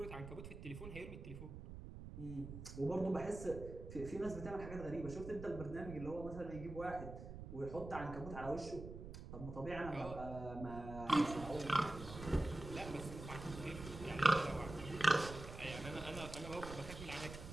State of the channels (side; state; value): right; noise; rumble, 10 dB below the sound